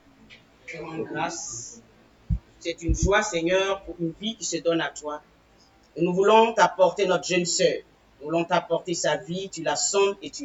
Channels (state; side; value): identical; both; correlation 1.00